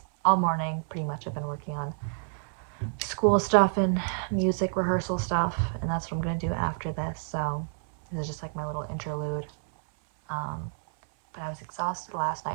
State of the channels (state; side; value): silent; left; 59 dB below the other